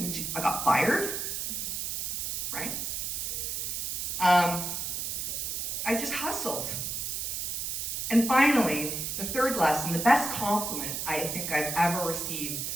I got fired, right? I just hustled. And finally, the third lesson, the best compliment I think I've ever received,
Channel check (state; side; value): noise; right; hiss, 2 dB below the sound